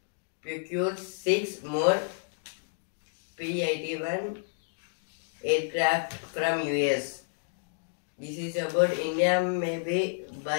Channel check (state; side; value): silent; right; digital silence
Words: procure 6 more P-81 aircraft from US. This is about India maybe